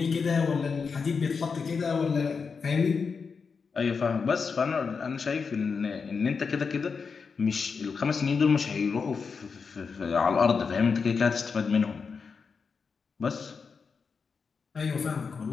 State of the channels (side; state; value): right; quieter; 5.4 dB